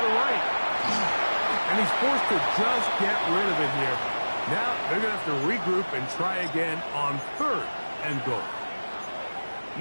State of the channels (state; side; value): inverted; both; correlation -1.00